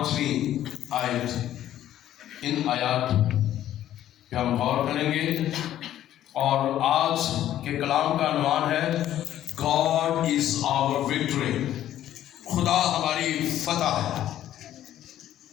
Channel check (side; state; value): right; quieter; 12.2 dB